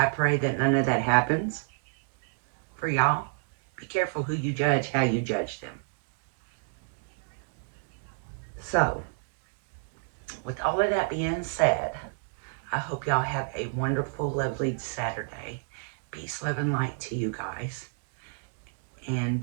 pray that none of that happens. for y'all. Be careful who you judge, how you judge them. So, with all of that being said, I hope y'all have a wonderful, lovely Saturday. Peace, love, and light to you guys. And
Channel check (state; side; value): silent; left; digital silence